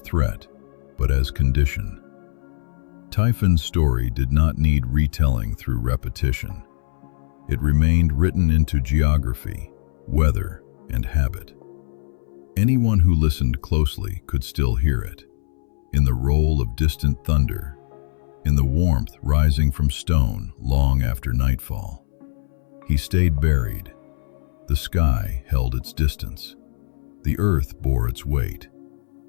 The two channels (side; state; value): right; silent; 64 dB below the other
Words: but as condition. Typhon's story did not need retelling through repetition. It remained written into geography, weather, and habit. Anyone who listened closely could still hear it, in the roll of distant thunder, in the warmth rising from stone long after nightfall. He stayed buried. The sky held its distance. The earth bore its weight,